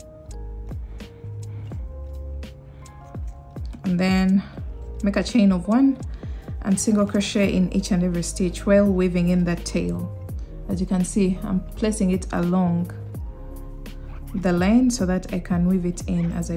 And then make a chain of 1 and single crochet in each and every stitch while weaving in that tail. As you can see, I'm placing it along the line so that I can weave it in as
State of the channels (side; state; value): both; identical; correlation 1.00